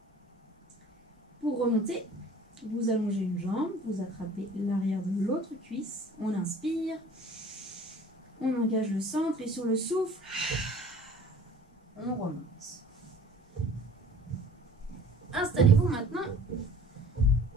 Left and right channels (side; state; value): both; normal; correlation 0.48